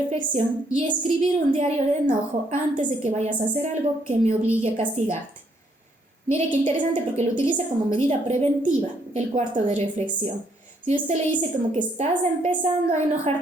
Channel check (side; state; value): both; normal; correlation 0.70